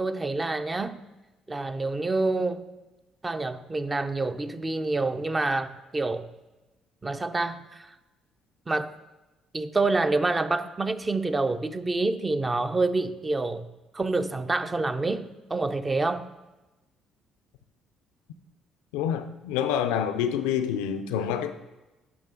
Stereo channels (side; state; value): both; normal; correlation 0.78